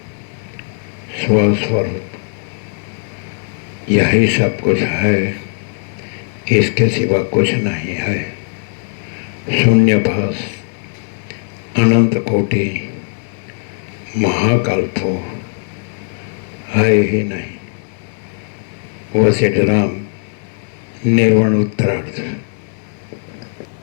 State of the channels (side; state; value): right; silent; 68 dB below the other